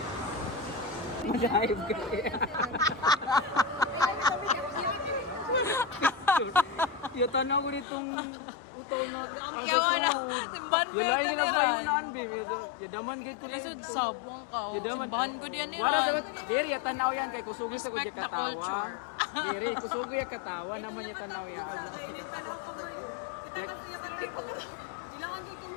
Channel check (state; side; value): drops out; right; at 7.9 s